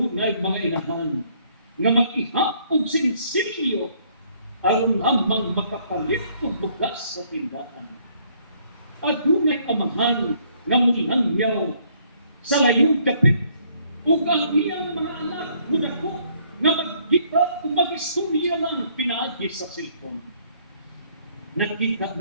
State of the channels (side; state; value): both; inverted; correlation -0.65